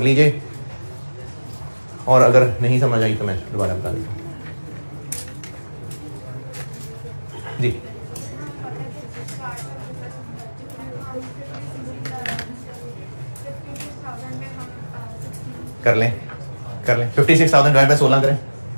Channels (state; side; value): inverted; both; correlation -1.00